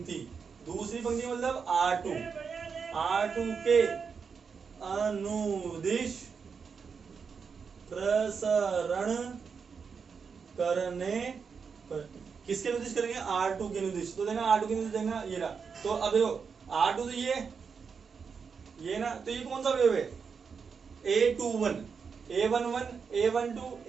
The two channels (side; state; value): left; quieter; 5.9 dB